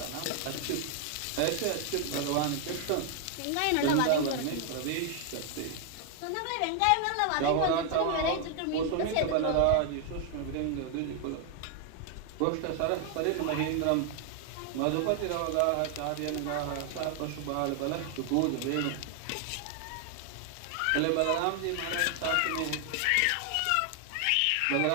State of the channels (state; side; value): different; both; correlation 0.00